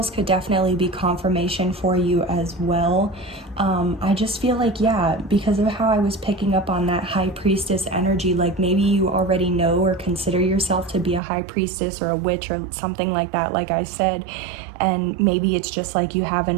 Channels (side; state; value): left; drops out; at 11.2 s